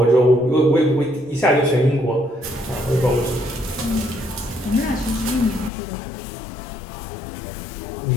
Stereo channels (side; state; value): right; drops out; at 5.7 s